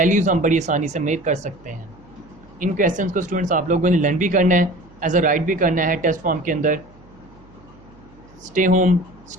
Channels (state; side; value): noise; right; hum, 26 dB below the sound